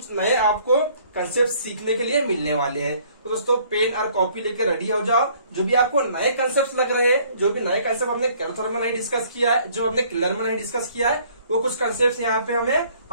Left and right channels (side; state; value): both; inverted; correlation -0.59